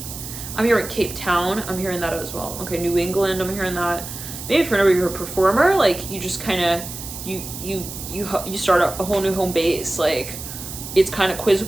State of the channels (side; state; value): right; noise; hiss, 10 dB below the sound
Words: I'm hearing Cape Town. I'm hearing that as well. Okay, New England, I'm hearing that. Maybe for whenever you're a performer, like, you just kind of, you start a whole new home base. Like, it's kind of